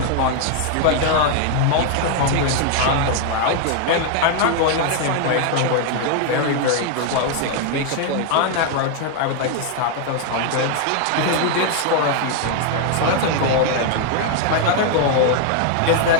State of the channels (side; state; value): both; different; correlation 0.00